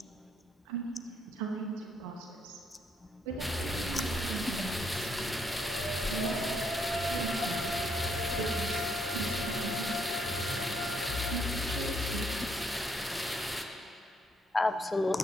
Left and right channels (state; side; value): normal; both; correlation 0.73